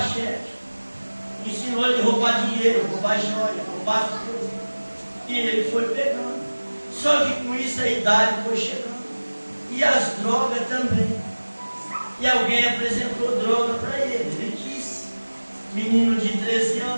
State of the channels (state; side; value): inverted; both; correlation -1.00